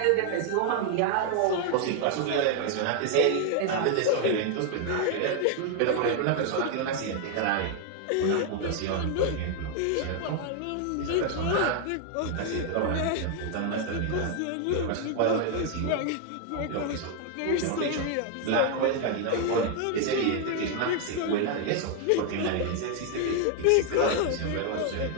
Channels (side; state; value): both; different; correlation 0.00